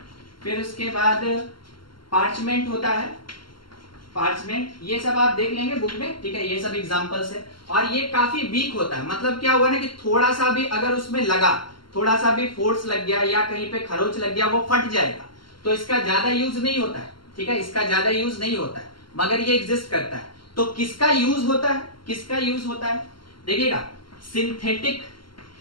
फिर उसके बाद पार्चमेंट होता है, पार्चमेंट, ये सब आप देख लेंगे बुक में, ठीक है, ये सब एग्जांपल्स है। और ये काफी वीक होता है, मतलब क्या हुआ ना कि थोड़ा सा भी अगर उसमें लगा, थोड़ा सा भी फोर्स लग गया या कहीं पे खरोच लग गया, वो फट जाएगा। तो इसका ज्यादा यूज नहीं होता है, ठीक है, इसका ज्यादा यूज नहीं होता है, मगर ये एग्जिस्ट करता है। तो किसका यूज होता है, किसका यूज होता है, देखिएगा,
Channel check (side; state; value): right; late; 0.72 ms